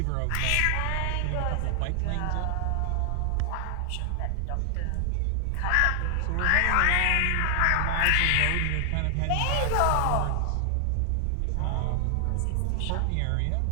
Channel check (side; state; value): both; different; correlation 0.00